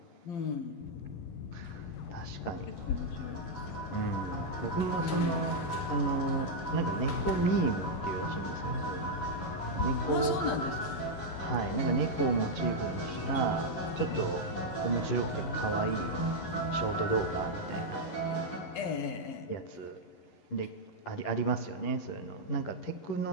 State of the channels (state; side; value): late; right; 11 ms